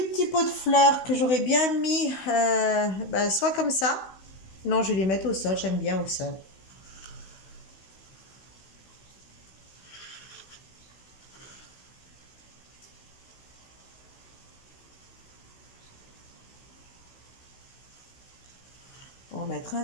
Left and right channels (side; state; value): right; late; 16 ms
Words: petits pots de fleurs que j'aurais bien mis soit comme ça. Non, je vais les mettre au sol, j'aime bien au sol. en mettre un